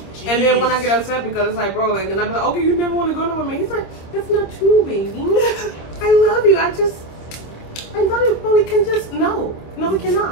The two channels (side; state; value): right; late; 26 ms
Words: And then when I get upset because it's like, bro, like, then I be like, okay, you never want to go nowhere with me. He's like, it's not true, baby. I love you. I love you, but we can just, no, we